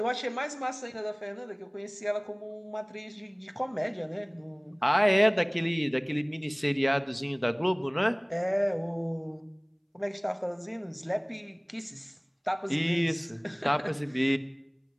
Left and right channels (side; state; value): both; identical; correlation 1.00